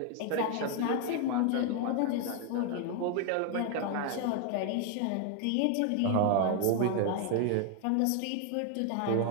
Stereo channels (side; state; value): both; different; correlation 0.01